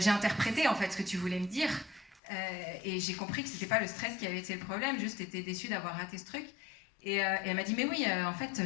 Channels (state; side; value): drops out; right; at 2.2 s